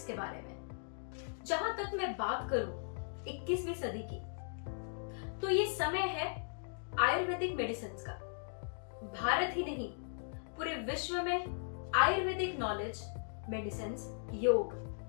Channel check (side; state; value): right; silent; digital silence